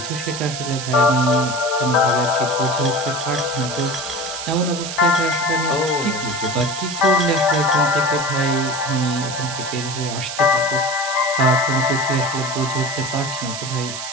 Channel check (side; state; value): right; noise; hiss, 7 dB below the sound